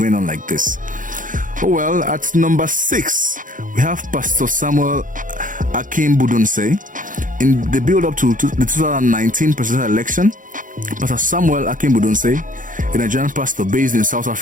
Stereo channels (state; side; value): late; left; 0.38 ms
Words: on like this? Oh well, at number 6 we have Pastor Samuel Akim Budunse. In the build-up to the 2019 presidential election, Pastor Samuel Akim Budunse, a Nigerian pastor based in South